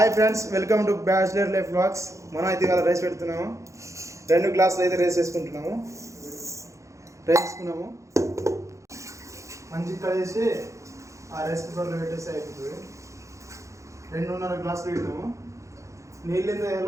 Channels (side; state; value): left; late; 0.15 ms